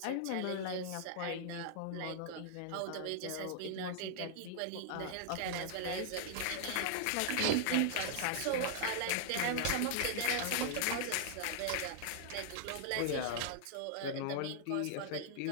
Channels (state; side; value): different; both; correlation -0.01